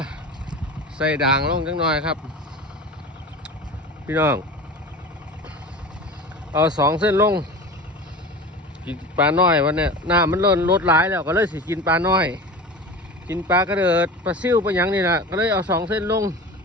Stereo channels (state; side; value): normal; both; correlation 0.33